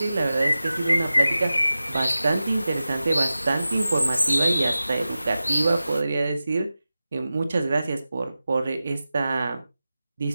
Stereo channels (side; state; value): both; inverted; correlation -0.94